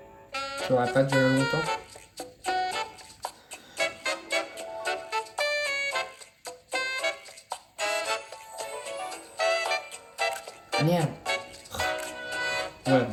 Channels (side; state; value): both; identical; correlation 1.00